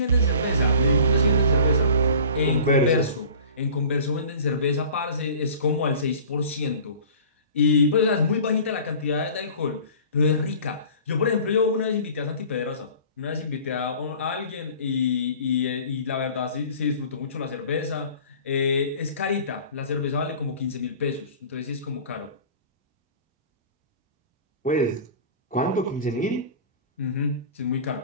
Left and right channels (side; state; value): both; inverted; correlation -0.43